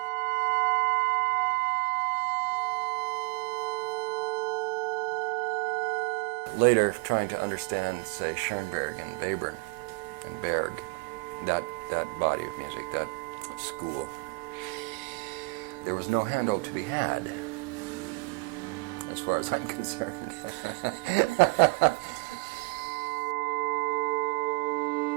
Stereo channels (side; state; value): left; quieter; 27.3 dB